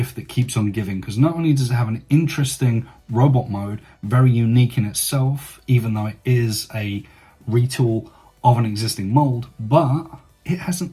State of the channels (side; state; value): both; identical; correlation 1.00